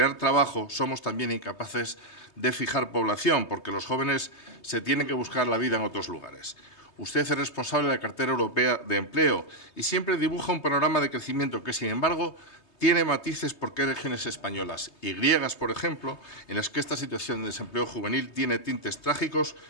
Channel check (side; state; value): right; late; 3.2 ms